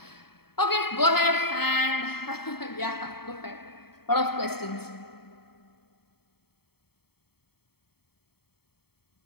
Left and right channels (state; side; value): late; right; 0.96 ms